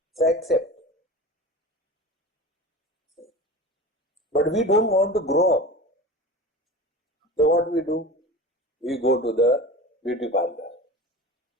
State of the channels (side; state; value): both; normal; correlation 0.33